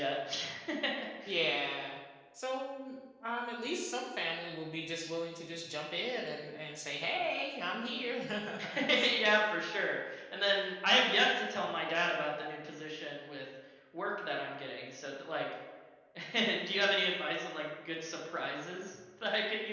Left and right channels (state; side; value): identical; both; correlation 1.00